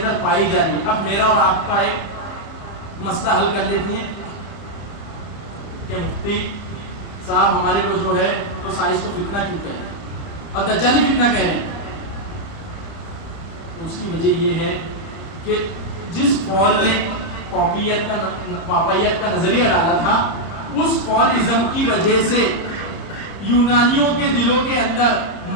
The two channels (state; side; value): late; right; 30 ms